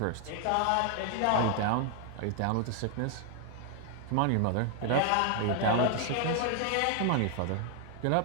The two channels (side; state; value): both; different; correlation 0.00